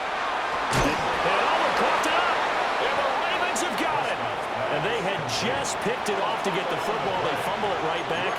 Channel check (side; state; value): both; identical; correlation 1.00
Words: And overcooked it up. And the Ravens have got it. And And they had just picked it off to get the football. They fumble it right back.